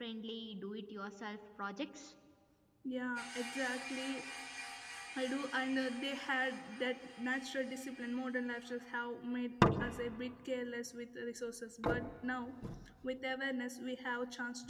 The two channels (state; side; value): identical; both; correlation 1.00